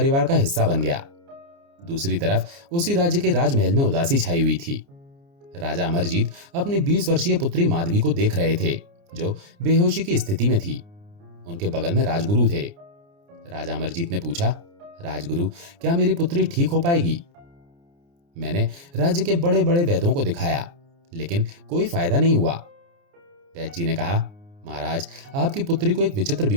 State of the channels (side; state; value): left; late; 29 ms